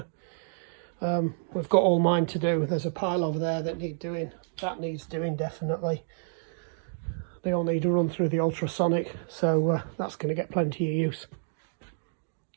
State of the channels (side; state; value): left; silent; digital silence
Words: We've got all mine to do. There's a pile over there that need doing. That needs doing definitely. They all need to run through the ultrasonic, so that's going to get plenty of use.